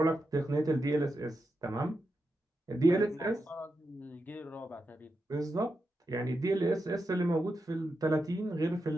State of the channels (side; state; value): both; normal; correlation 0.87